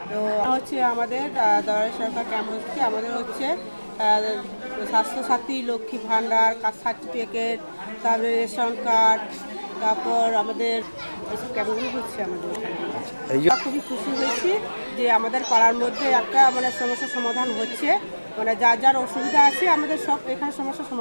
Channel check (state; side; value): inverted; both; correlation -1.00